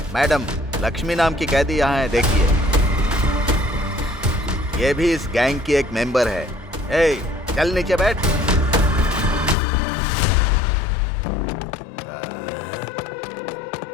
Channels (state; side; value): drops out; right; at 9.6 s